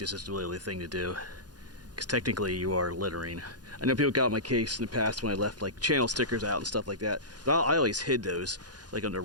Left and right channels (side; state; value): left; late; 0.69 ms